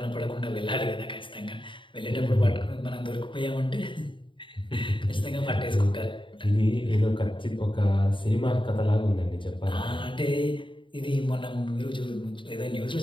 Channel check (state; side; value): late; right; 0.24 ms